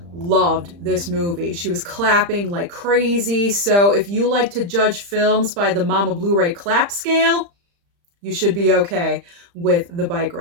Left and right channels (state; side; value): late; left; 35 ms